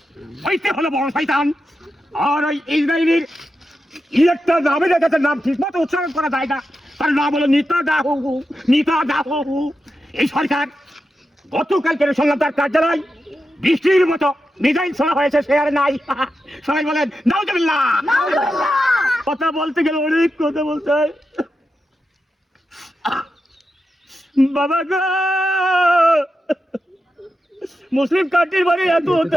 হইতে হলো বড় শয়তান। আর ওই ইসরায়েলের একটা নামে রেখেছে, নাম ঠিক মতো উচ্চারণ করা যায় না, তার নাম হলো নেতানিয়াহু। এই সরকার গতকালকে শুনলাম তার কার্যালয় বৃষ্টির মতো মিসাইল ছোড়া হয়েছে, সে আর নাই। সবাই বলেন নাউজুবিল্লাহ। কথা বলতে গেলে অনেক কথা বলতে হয়। বাবা গো, মুসলিম কান্ট্রির বাড়ি এত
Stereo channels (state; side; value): normal; both; correlation 0.89